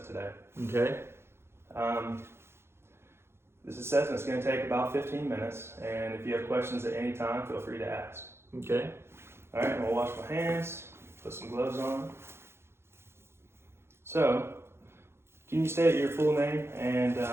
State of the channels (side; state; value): left; late; 0.12 ms